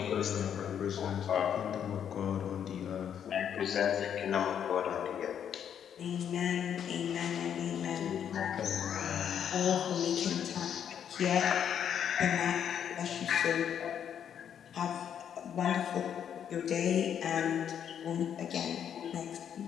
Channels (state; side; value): quieter; right; 8.8 dB